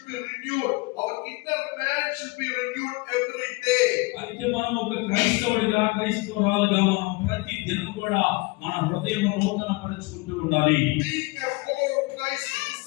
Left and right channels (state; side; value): quieter; right; 25.1 dB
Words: be renewed. Our inner man should be renewed every day. అయితే మనం ఒక క్రైస్తవుడిగా, క్రైస్తవురాలుగా మనం ప్రతి దినం కూడా మన హృదయం నూతన పరుచుకుంటూ ఉండాలి. Being a follower of Christ, a